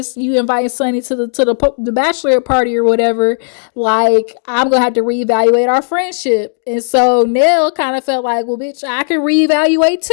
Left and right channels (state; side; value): silent; right; digital silence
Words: you inviting Sunny to the bachelorette party or whatever, like, I'm gonna have to reevaluate our friendship. And so Nell kind of felt like, well, bitch, I can reevaluate